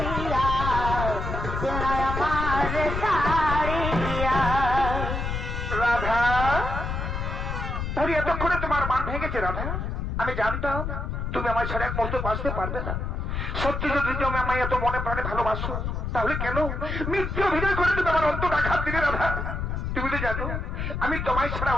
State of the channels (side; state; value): left; noise; rumble, 3 dB below the sound